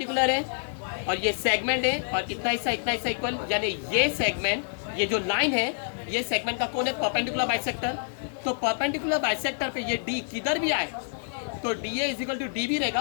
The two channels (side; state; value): right; silent; 60 dB below the other